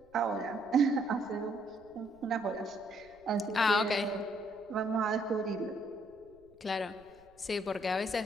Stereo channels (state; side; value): noise; right; rumble, 30 dB below the sound